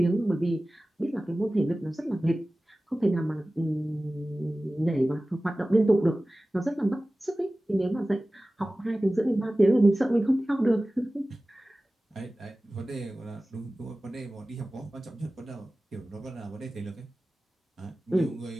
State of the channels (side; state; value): both; normal; correlation 0.97